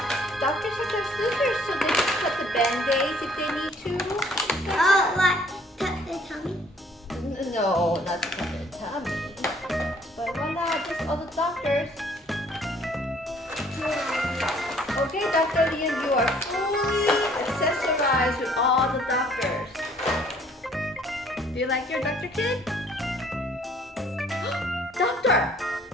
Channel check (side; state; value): both; normal; correlation 0.59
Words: Doctors have their scissors so they can cut the band-aids if they need to. No, not to cut their tummy. But voila, just all the doctors. Okay, Dr. Liam, you are fully accessorized with all the doctors. Do you like your doctor kid? Doctor!